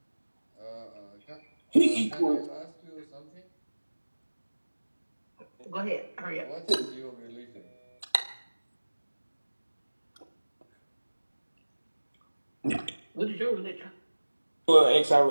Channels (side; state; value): both; inverted; correlation -1.00